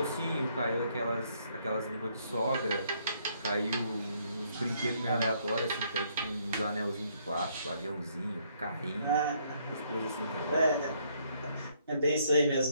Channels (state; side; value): inverted; both; correlation -0.69